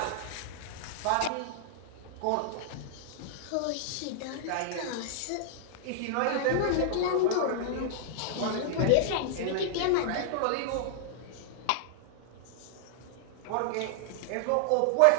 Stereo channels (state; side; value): different; both; correlation -0.01